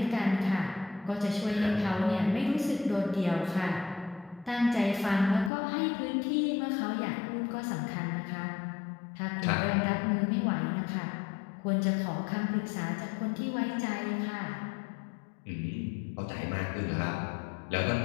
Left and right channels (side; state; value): right; drops out; at 5.5 s